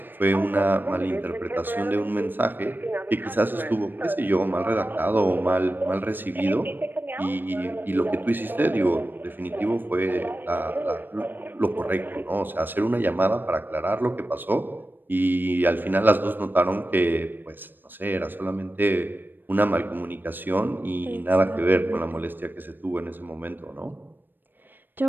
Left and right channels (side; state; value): left; late; 0.093 ms